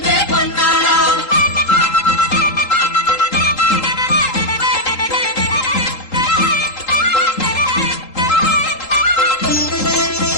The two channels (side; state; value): right; late; 3.8 ms